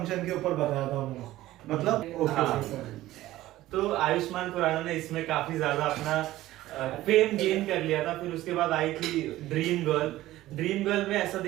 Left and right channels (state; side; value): quieter; left; 15.7 dB